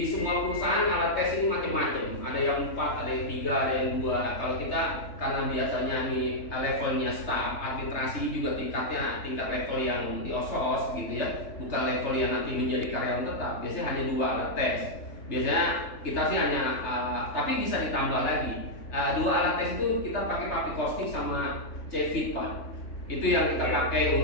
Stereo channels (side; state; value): right; late; 3.2 ms